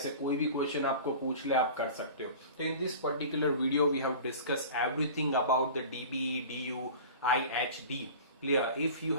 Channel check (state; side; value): inverted; both; correlation -0.38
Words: कोई भी क्वेश्चन आपको पूछ ले आप कर सकते हो. तो in this particular video we have discuss everything about the DBE, DU, IHD. Clear? If you